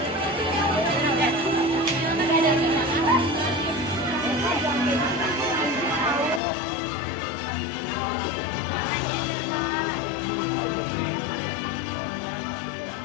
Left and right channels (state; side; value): drops out; right; at 6.4 s